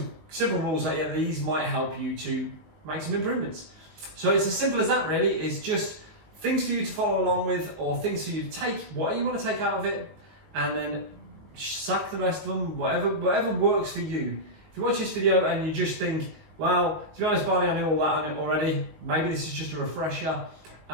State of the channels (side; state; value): left; late; 19 ms